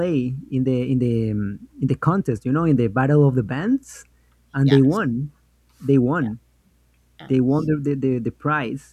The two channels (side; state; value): both; identical; correlation 1.00